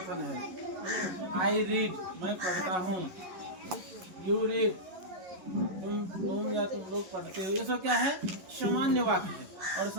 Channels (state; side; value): late; left; 11 ms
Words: है। आई रीड, मैं पढ़ता हूँ। यू रीड, तुम या तुम लोग पढ़ते हो। ये सब क्या है? सामान्य वाक्य है। और